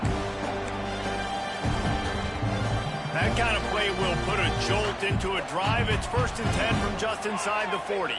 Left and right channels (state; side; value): identical; both; correlation 1.00